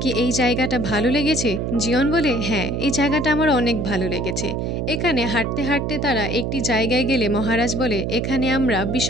কি এই জায়গাটা ভালো লেগেছে? জিয়ন বলে হ্যাঁ, এই জায়গাটা আমার অনেক ভালো লেগেছে। এখানে হাঁটতে হাঁটতে তারা একটি জায়গায় গেলে মহারাজ বলে এখানে আমরা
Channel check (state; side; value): noise; right; hum, 1 dB below the sound